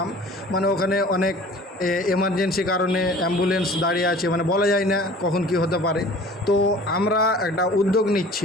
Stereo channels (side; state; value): both; normal; correlation 0.46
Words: মানে ওখানে অনেক এমার্জেন্সি কারণে অ্যাম্বুলেন্স দাঁড়িয়ে আছে, মানে বলা যায় না কখন কি হতে পারে। তো আমরা একটা উদ্যোগ